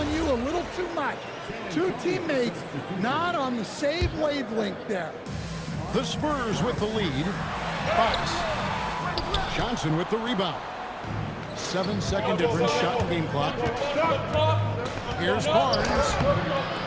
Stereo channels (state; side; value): identical; both; correlation 1.00